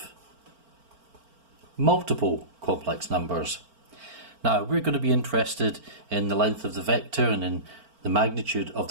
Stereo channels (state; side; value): late; left; 4.4 ms